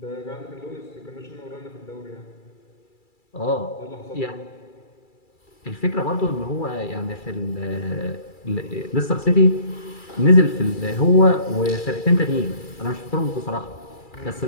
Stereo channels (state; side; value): late; right; 2.3 ms